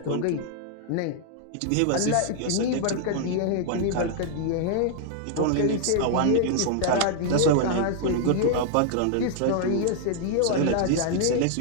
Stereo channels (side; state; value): both; different; correlation -0.01